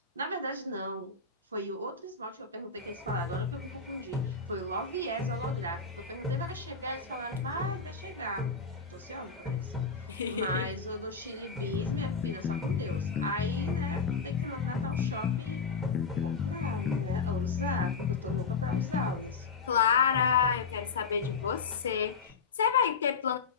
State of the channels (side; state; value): right; quieter; 5.0 dB